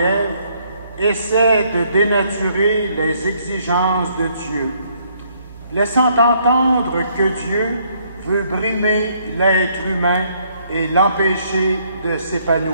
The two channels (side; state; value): both; inverted; correlation -0.68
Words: essaie de dénaturer les exigences de Dieu, laissant entendre que Dieu veut brimer l'être humain et l'empêcher de